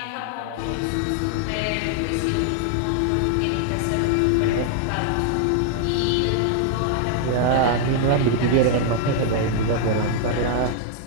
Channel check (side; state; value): both; different; correlation 0.00